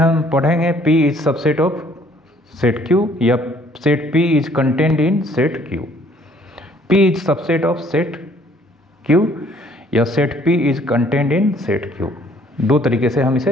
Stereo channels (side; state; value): both; normal; correlation 0.61